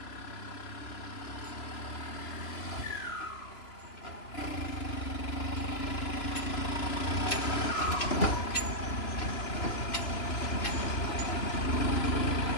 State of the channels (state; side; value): late; right; 3.0 ms